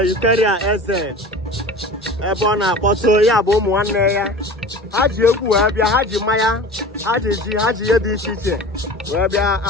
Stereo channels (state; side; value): normal; both; correlation 0.37